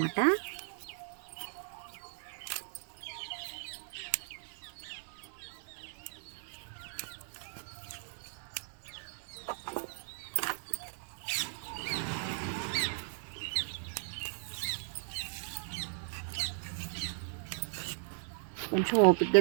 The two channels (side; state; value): left; silent; 53 dB below the other